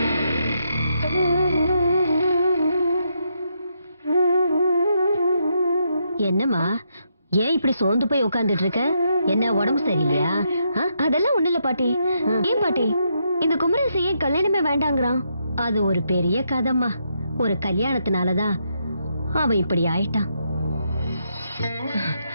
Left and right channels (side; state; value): both; inverted; correlation -0.79